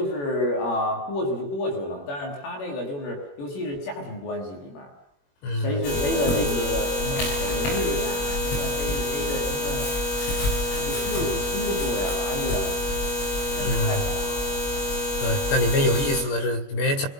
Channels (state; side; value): late; right; 21 ms